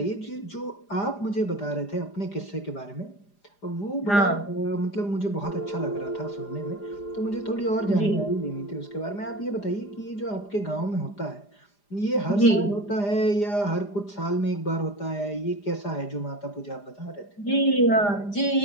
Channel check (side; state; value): right; late; 4.9 ms